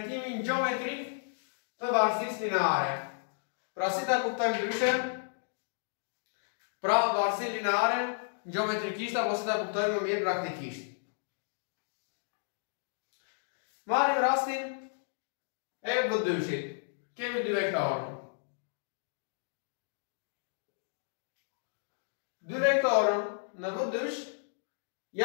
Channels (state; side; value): silent; right; digital silence